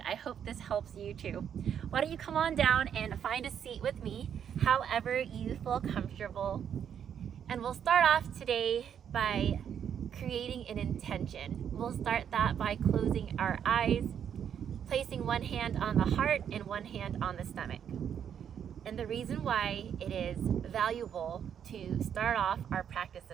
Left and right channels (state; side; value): quieter; left; 8.6 dB